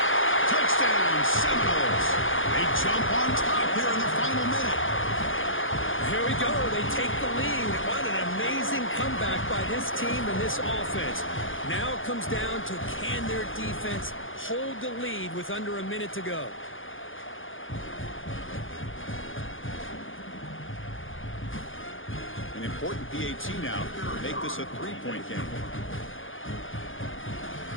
Touchdown, Seminoles. They jump on top here in the final minute. Here we go. They take the lead. What an amazing comeback by this team and this offense. Now it comes down to can their defense hold the lead with under a minute to go. An important PAT now to make this a 3-point game.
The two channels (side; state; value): right; late; 0.58 ms